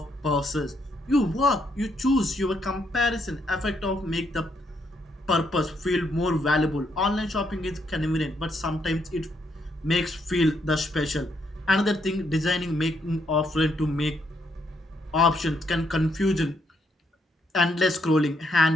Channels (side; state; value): both; normal; correlation 0.75